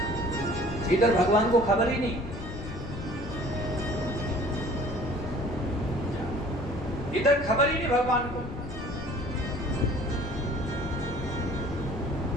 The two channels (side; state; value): left; noise; rumble, 9 dB below the sound